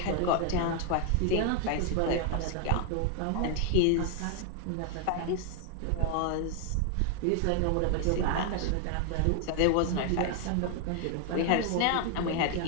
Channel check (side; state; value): both; different; correlation 0.00